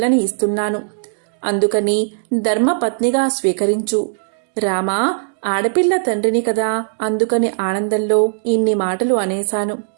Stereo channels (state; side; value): silent; left; digital silence